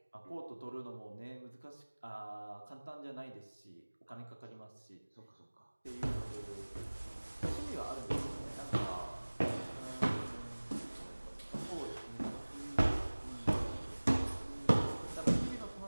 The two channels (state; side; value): inverted; both; correlation -1.00